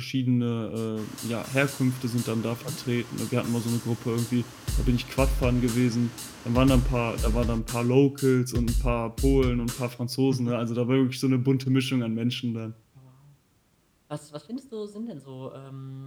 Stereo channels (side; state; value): both; identical; correlation 1.00